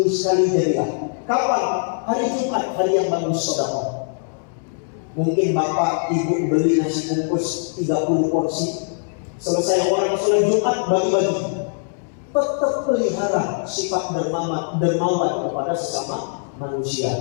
sekali jadilah. Kapan? Hari Jumat, hari yang bagus sedekah. Mungkin bapak ibu beli nasi bungkus 30 porsi, selesai orang sholat Jumat bagi-bagi. Tetap pelihara sifat dermawan kepada sesama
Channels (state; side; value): silent; right; 64 dB below the other